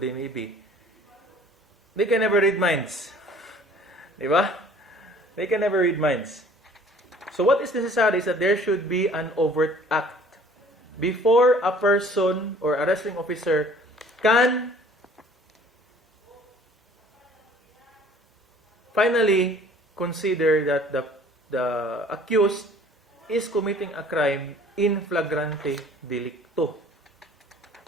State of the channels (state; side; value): normal; both; correlation 0.52